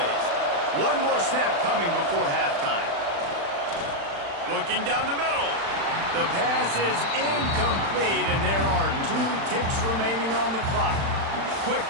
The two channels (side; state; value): left; late; 36 ms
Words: One more snap coming before halftime. Looking down the middle. The pass is incomplete, and there are 2 ticks remaining on the clock. Quick